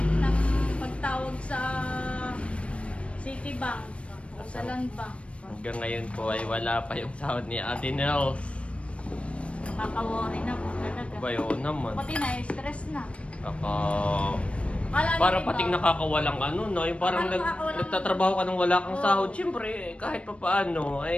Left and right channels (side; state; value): right; late; 0.061 ms